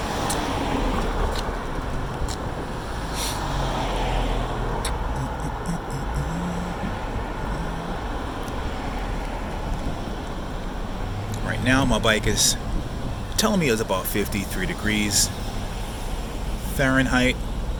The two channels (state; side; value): identical; both; correlation 1.00